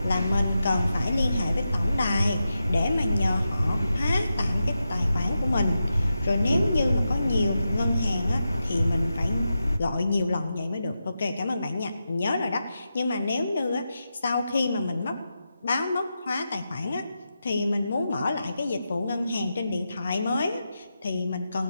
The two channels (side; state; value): both; inverted; correlation -0.89